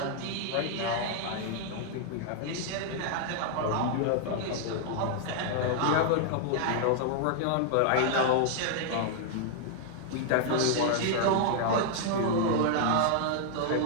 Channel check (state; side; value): different; both; correlation 0.00